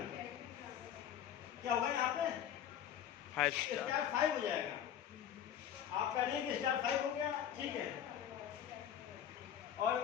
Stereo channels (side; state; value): right; quieter; 9.8 dB